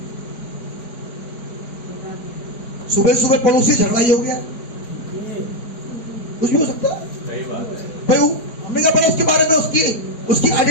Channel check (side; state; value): right; late; 4.6 ms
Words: सुबह सुबह पड़ोसी झगड़ा ही हो गया, कुछ भी हो सकता है सही बात है। भाई। हमने कहा पहले उसके बारे में, उसकी